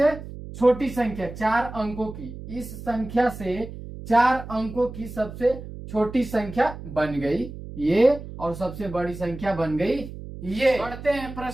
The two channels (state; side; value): noise; right; hum, 12 dB below the sound